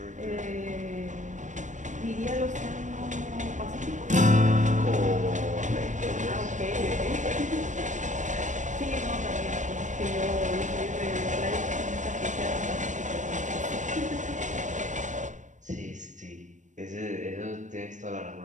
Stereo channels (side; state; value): left; late; 0.35 ms